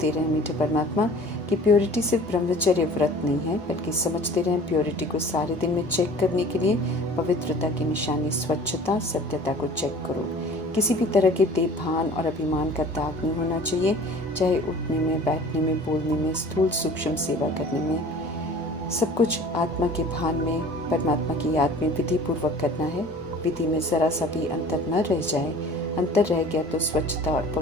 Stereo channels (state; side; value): normal; both; correlation 0.45